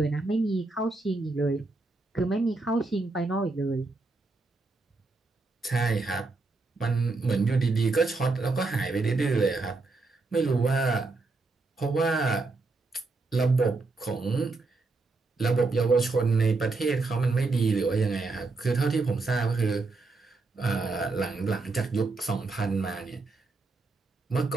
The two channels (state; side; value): quieter; left; 3.6 dB